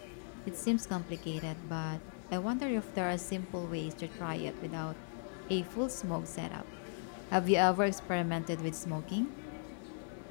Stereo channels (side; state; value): right; silent; 53 dB below the other